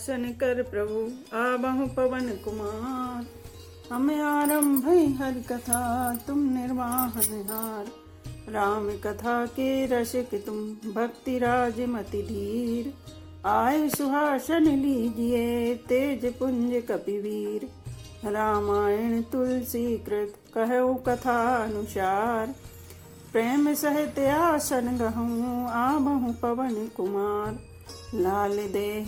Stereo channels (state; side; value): identical; both; correlation 1.00